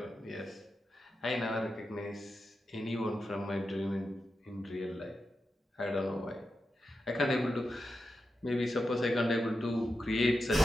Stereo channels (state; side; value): normal; both; correlation 0.89